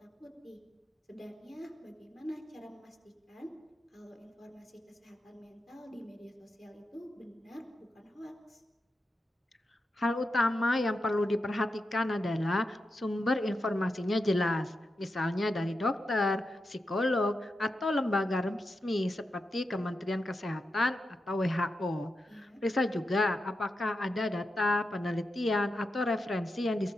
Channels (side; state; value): both; normal; correlation 0.88